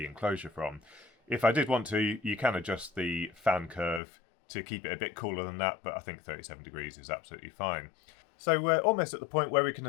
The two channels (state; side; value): drops out; right; at 4.0 s